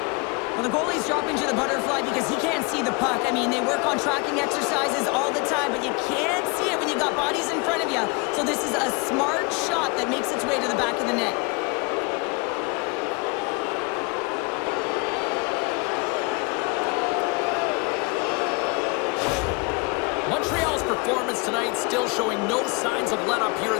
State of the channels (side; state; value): right; quieter; 29.8 dB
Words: Well, the goalie's dropping to the butterfly because he can't see the puck. I mean, they work on tracking exercises all the time, but you can't see it when you got bodies in front of you. So this is a smart shot that makes its way to the back of the net. Montreal's for performance tonight, still showing no signs of let-up here